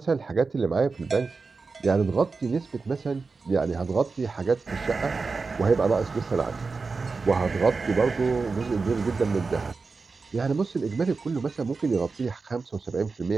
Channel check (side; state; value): left; quieter; 4.3 dB